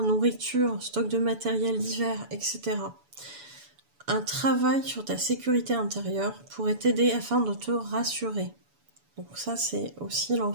nourriture, stock de matériel divers, etc. Un travail sur ta sécurité intérieure pourrait t'aider afin de te rassurer. Donc ça, c'est aussi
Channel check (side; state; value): left; late; 7.0 ms